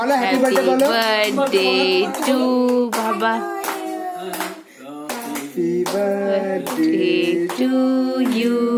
হ্যাপি বার্থডে বলো বার্থডে টু বাবা happy birthday to you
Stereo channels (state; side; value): identical; both; correlation 1.00